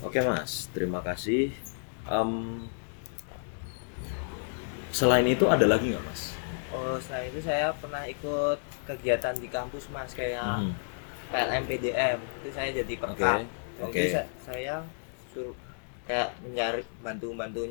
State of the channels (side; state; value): right; silent; digital silence